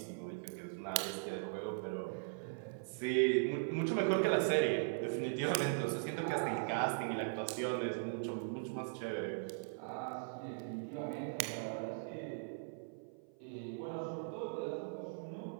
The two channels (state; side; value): silent; left; 51 dB below the other